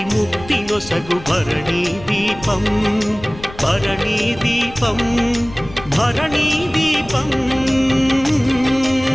ముక్తి నొసగు భరణీ దీపం భరణీ దీపం భరణీ దీపం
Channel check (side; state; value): left; noise; rumble, 17 dB below the sound